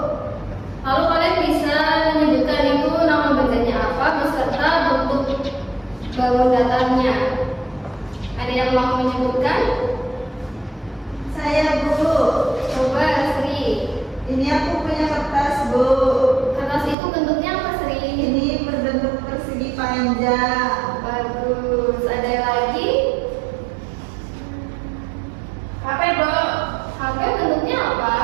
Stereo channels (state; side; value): drops out; left; at 16.9 s